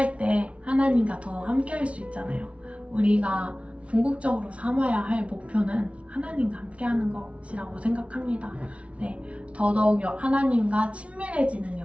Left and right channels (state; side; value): late; left; 0.062 ms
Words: 때 하나님과 더 함께 할 수 있잖아요. 우리가 궁극적으로 삼아야 할 목표는 하나님과 함께 하는 것이라고 생각합니다. 네, 더더욱 하나님과 친밀해지는